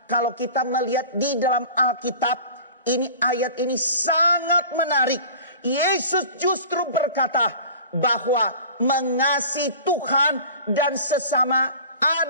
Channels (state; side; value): inverted; both; correlation -0.40